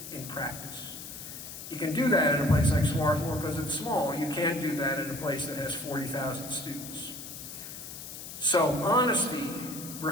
in practice. You can do that in a place like Schwartz because it's small. You can't do that in a place that has 40,000 students. So honesty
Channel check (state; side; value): noise; left; hiss, 11 dB below the sound